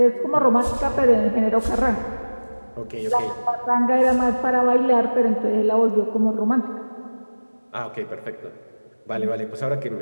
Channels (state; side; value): inverted; both; correlation -1.00